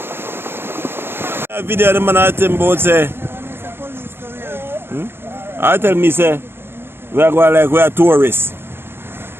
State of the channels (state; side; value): late; left; 0.11 ms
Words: Video the man I tell about say. I tell me say we are going like we are tourists.